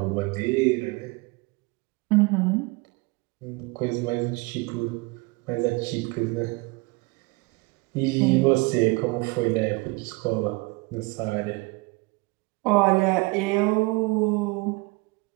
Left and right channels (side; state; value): left; quieter; 25.9 dB